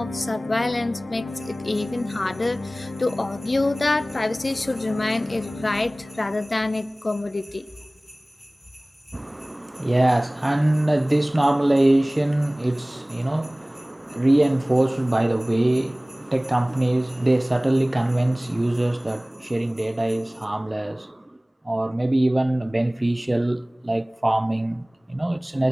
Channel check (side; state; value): both; normal; correlation 0.98